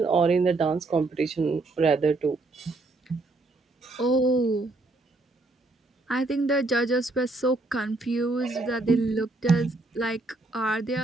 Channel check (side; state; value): left; quieter; 3.1 dB